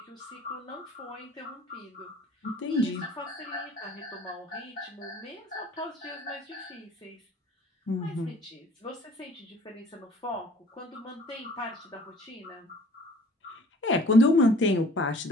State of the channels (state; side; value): normal; both; correlation 0.50